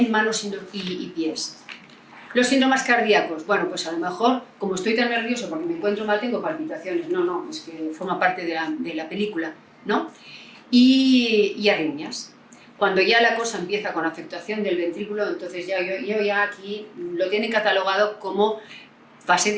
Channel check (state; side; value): identical; both; correlation 1.00